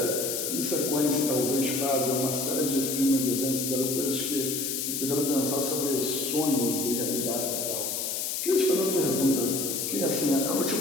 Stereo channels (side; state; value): left; noise; hiss, 2 dB below the sound